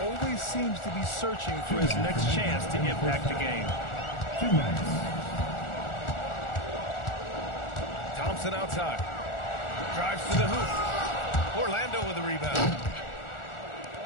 always seems to be searching for his next chance to impact the game. 2 minutes. Thompson outside. Drives to the hoop. Orlando with the rebound.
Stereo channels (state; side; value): late; right; 1.4 ms